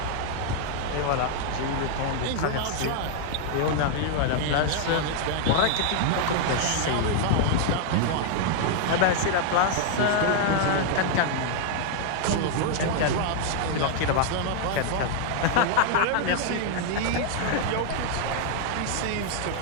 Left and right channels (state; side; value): different; both; correlation 0.00